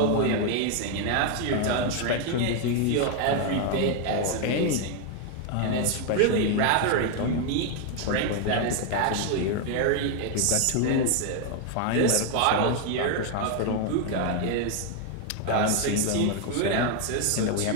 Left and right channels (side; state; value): both; different; correlation 0.01